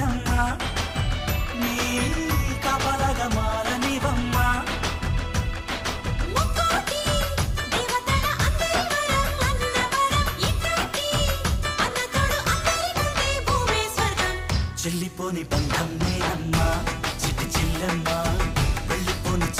నీ కాపలాగా మారనివమ్మా చెల్లిపోని బంధం నేనమ్మా చిట్టి చెల్లెమ్మా వెళ్ళిపోని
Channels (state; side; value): identical; both; correlation 1.00